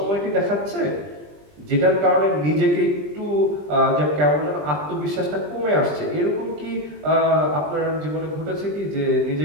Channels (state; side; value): late; left; 20 ms